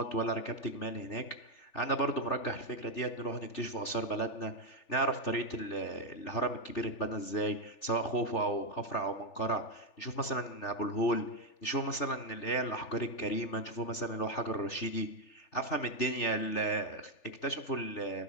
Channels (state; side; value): late; right; 3.4 ms